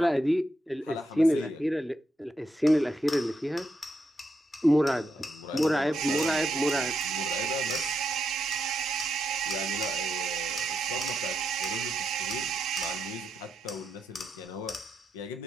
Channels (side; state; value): both; normal; correlation 0.83